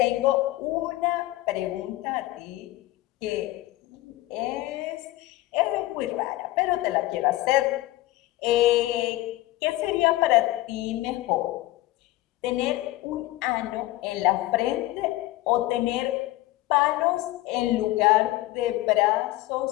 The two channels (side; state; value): right; quieter; 17.5 dB